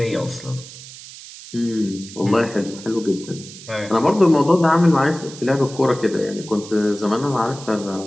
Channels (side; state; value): right; noise; hiss, 16 dB below the sound